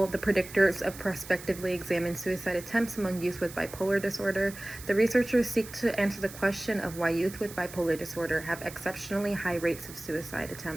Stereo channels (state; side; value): noise; right; hiss, 15 dB below the sound